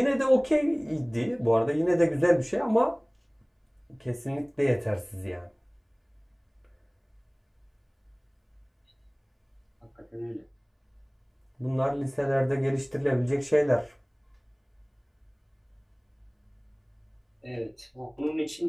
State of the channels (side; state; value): both; identical; correlation 1.00